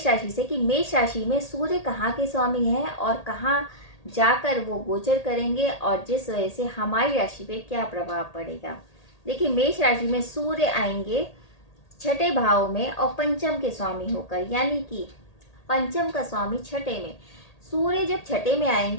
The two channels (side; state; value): right; late; 1.8 ms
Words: राशि से कि मेष राशि में सूर्य कहाँ के स्वामी हैं और कहाँ जाकर वो गोचर करेंगे और जिस वजह से हमारी राशि पे क्या प्रभाव पड़ेगा। देखिए, मेष राशि में सूर्य आएंगे छठे भाव में और पंचम के स्वामी होकर, यानी कि पंचम का स्वामी छठे में। सूर्य जब छठे में